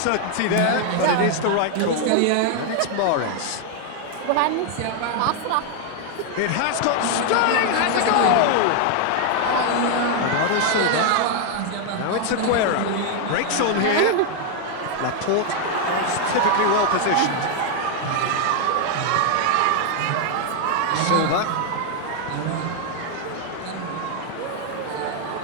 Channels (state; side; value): different; both; correlation 0.00